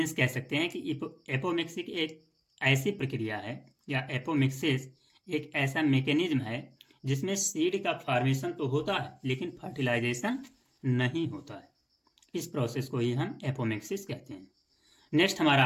कह सकते हैं कि एपोमिक्सिस एक ऐसी प्रक्रिया है या एपोमिक्सिस एक ऐसा मैकेनिज्म है जिसमें सीड का फॉर्मेशन तो होता है लेकिन फर्टिलाइजेशन नहीं होता है। इस प्रोसेस को ही हम एपोमिक्सिस कहते हैं। नेक्स्ट हमारा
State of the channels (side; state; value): both; identical; correlation 1.00